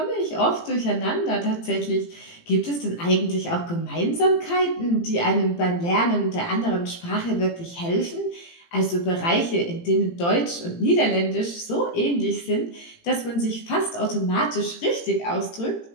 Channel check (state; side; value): late; right; 18 ms